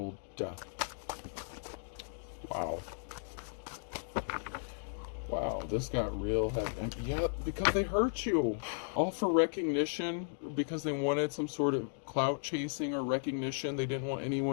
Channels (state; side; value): silent; right; digital silence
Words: death. Wow. Wow, this got real heavy. Yeah, because they hurt you. All for recognition, because they wanted some sort of clout chasing or recognition. They didn't want